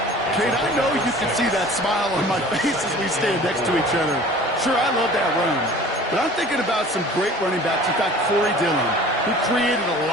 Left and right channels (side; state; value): both; normal; correlation 0.45